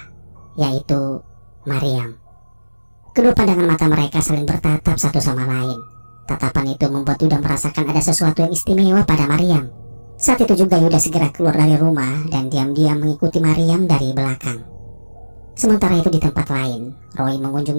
yaitu Maryam. Kedua pandangan mata mereka saling bertatap satu sama lain. Tatapan itu membuat Yuda merasakan ada sesuatu yang istimewa pada Maryam. Saat itu juga Yuda segera keluar dari rumah dan diam-diam mengikuti Maryam dari belakang. Sementara itu di tempat lain, Roy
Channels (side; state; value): both; inverted; correlation -1.00